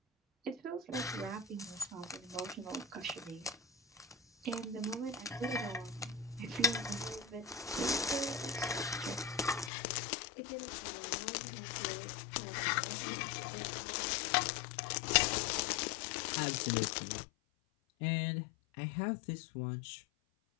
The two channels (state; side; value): drops out; right; at 9.7 s